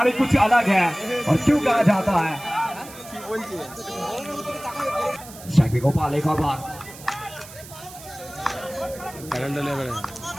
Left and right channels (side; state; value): right; noise; hiss, 17 dB below the sound